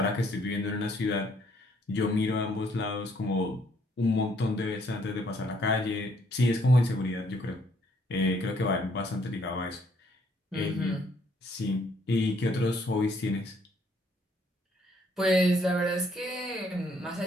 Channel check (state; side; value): normal; both; correlation 0.67